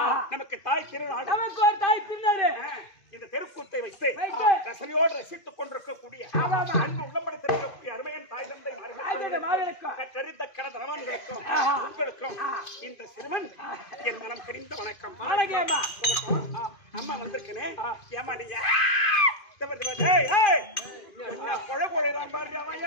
நமக்கு தாய் திருநாடு, நமக்கு ஒரு தாய் திருநாடு. இந்த தெருக்கூத்தை வைத்து ரசனையோடு ரசித்துக் கொண்டிருக்கக்கூடிய அன்பு உள்ளம்படுத்திருக்கக்கூடிய அருமையன் தாய் தந்தை மார்களுக்கும் கற்றறிந்த கடதனவான்களுக்கும் உங்களுக்கும் இந்த சிறுவன் என் மனம் கரிந்த வணக்கம். அம்மா வந்திருக்கனே, ஏமா நீங்க கொழை கொழைதான் பாரு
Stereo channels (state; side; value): late; right; 2.5 ms